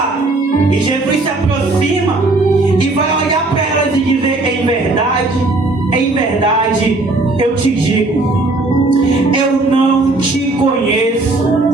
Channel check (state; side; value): quieter; left; 3.1 dB